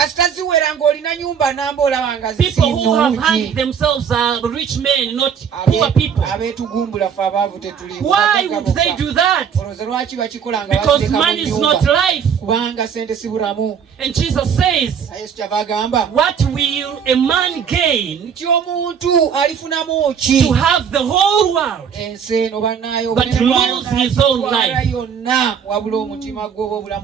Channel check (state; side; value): quieter; left; 7.4 dB